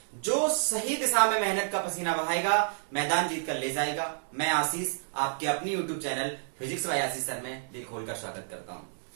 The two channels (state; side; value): silent; left; digital silence